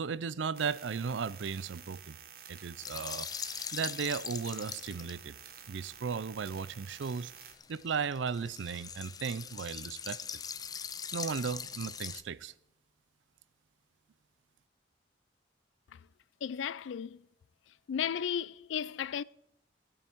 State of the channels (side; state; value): both; normal; correlation 0.09